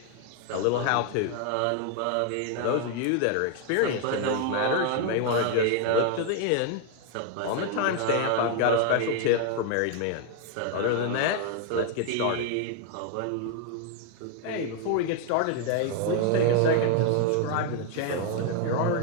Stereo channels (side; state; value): both; different; correlation 0.01